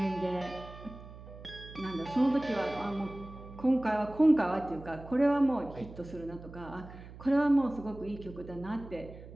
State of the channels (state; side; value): noise; right; hum, 16 dB below the sound